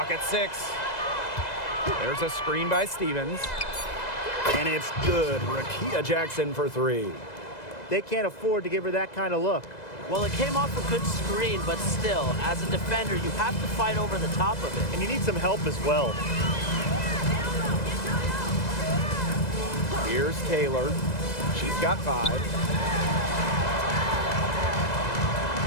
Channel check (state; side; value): late; right; 2.0 ms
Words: at 6. There's a screen by Stevens. And it's good. Rakita Jackson for three. They can't afford to give her that kind of look. Well, it came off a good screen, but still, as a defender, you have to fight over the top of it. And you need some help as well. Here's Taylor. She's got 5.